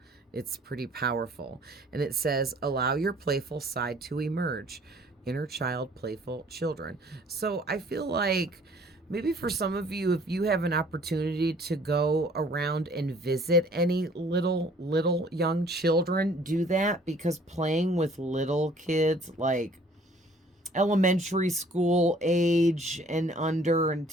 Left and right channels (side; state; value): both; normal; correlation 0.56